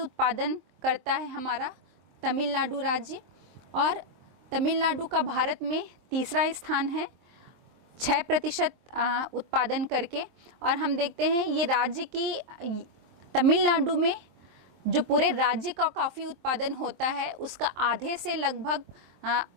करता है हमारा तमिलनाडु राज्य, और तमिलनाडु का भारत में तीसरा स्थान है 6% उत्पादन करके। और हम देखते हैं ये राज्य की तमिलनाडु में जो पूरे राज्य का कॉफ़ी उत्पादन होता है उसका आधे से लगभग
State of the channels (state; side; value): late; left; 23 ms